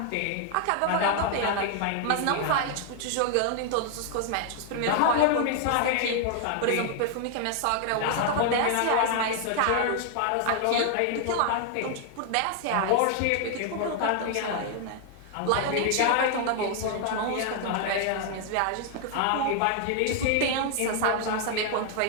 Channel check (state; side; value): different; both; correlation 0.00